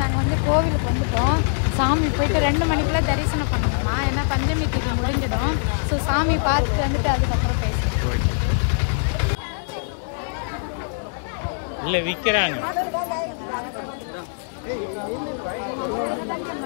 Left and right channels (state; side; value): silent; right; digital silence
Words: வந்து கோவிலுக்கு வந்துட்டோம். சாமி போயிட்டு 2 மணிக்குள்ள தரிசனம் பண்ணணுமா, ஏன்னா பஞ்சமி தீபம் முடிஞ்சிடும். ஸோ சாமி பார்த்துட்டு வந்துட்டு அதுக்கப்புறம் பேசுவோம். இல்ல விக்கிறாங்க.